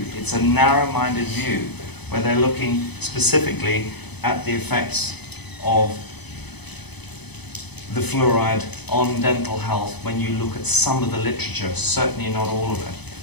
It's a narrow-minded view where they're looking specifically at the effects of the fluoride on dental health when you look at some of the literature, certainly not all of it.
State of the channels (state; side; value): late; right; 0.99 ms